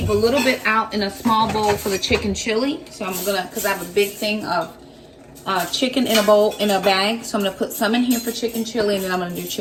a little bit out in a small bowl for the chicken chili. So I'm gonna, cause I have a big thing of chicken in a bowl, in a bag. So I'm gonna put some in here for chicken chili, and then I'm gonna do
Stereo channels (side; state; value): both; identical; correlation 1.00